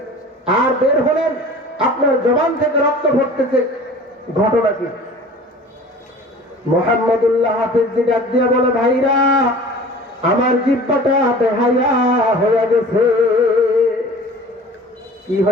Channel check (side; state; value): both; normal; correlation 0.43